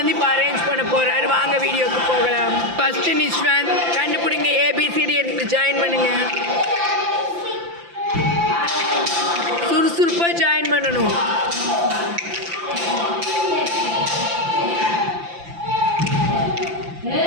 இப்போ அரேஞ்ச் பண்ண போகிறாரு. வாங்க வீடியோக்கு போகலாம். ஃபஸ்ட்டு நிஷ்வந்த் கண்டுபிடிங்க. ஏபிசிடி எடுத்து ஜாயின் பண்ணுங்க. சுறுசுறுப்பாக ஜாயின் பண்ணணும்.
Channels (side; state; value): left; late; 5.8 ms